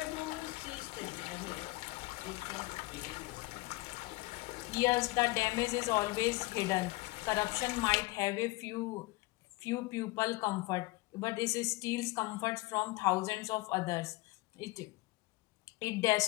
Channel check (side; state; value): right; quieter; 21.9 dB